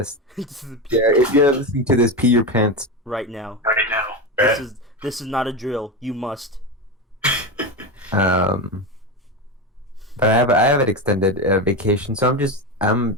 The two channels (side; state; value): both; normal; correlation 0.17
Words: Yeah, if you're listening to this, pee your pants. Right now. Right now. This is not a drill. You must. But I have an extended vacation, so I'm just